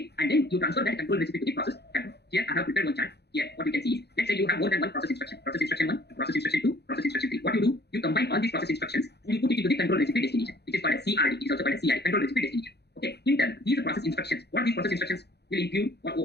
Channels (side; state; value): right; late; 0.48 ms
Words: and then you transfer that control recipe to the process control. Here I have prepared one chart. Here what you can see is, let's say you have more than one process instruction. Process instruction 1, process instruction 2, process instruction 3. What you do, you combine all these process instructions and you put it into the control recipe destination, which is called as CRD. It is also called as CRD, control recipe destination. Okay. In turn, these process instructions, what these process instructions will include,